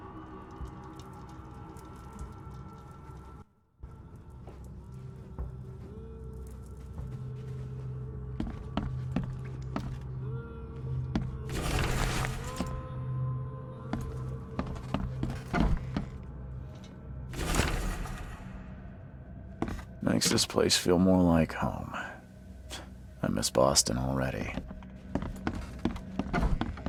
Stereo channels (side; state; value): both; identical; correlation 1.00